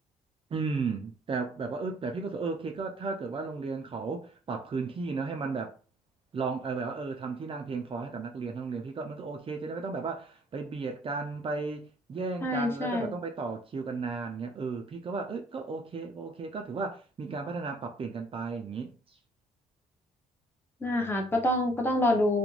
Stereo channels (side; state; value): both; normal; correlation 0.60